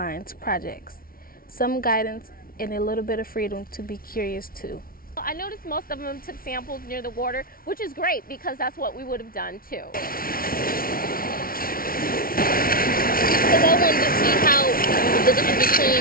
projects. Some guidance and a little bit of freedom to be curious too. I noticed most of them took samples near the water, which is great because that's what we would have done too. Because I wanted to see how the difference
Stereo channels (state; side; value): late; right; 0.43 ms